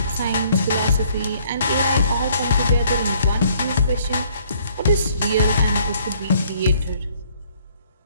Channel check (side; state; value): both; inverted; correlation -0.63